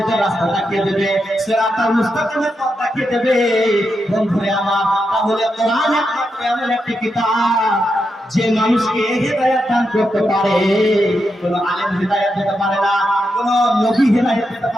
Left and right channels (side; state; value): both; normal; correlation 0.85